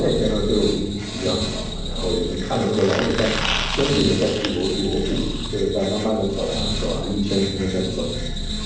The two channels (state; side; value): identical; both; correlation 1.00